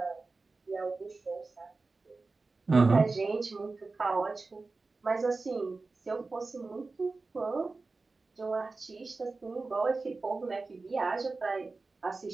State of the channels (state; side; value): quieter; left; 3.7 dB